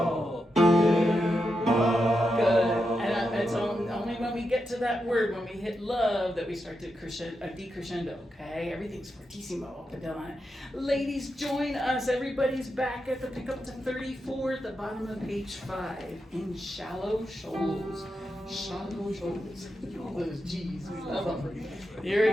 in love. Good. And it's only when we get to that word, when we hit love, that we start to decrescendo, okay? Everything's fortissimo up and down. Ladies, join us. Everybody's back at the pickup to 34 at the bottom of page 5 in shallow shoals. Shallow shoals. All those G's, we love them. Here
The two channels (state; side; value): normal; both; correlation 0.87